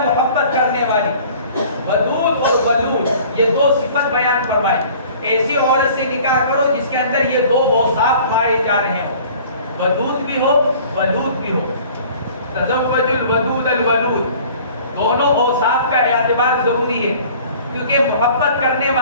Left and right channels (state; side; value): inverted; both; correlation -0.49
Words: محبت کرنے والی. ودود اور ولود یہ دو صفت بیان فرمائے. ایسی عورت سے نکاح کرو جس کے اندر یہ دو اوصاف پائے جا رہے ہوں، ودود بھی ہو ولود بھی ہو. تزوج الودود الولود، دونوں اوصاف کا اعتبار ضروری ہے کیونکہ محبت کرنے